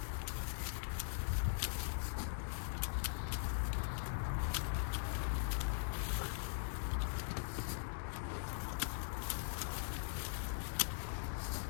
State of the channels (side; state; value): right; silent; digital silence